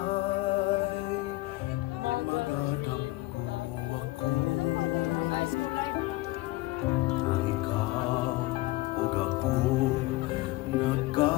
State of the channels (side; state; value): right; quieter; 19.3 dB